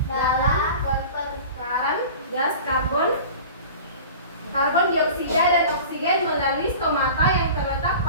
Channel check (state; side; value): inverted; both; correlation -0.39